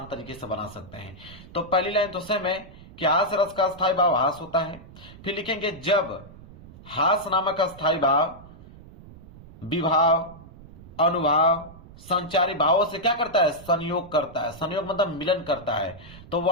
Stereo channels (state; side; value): noise; right; rumble, 19 dB below the sound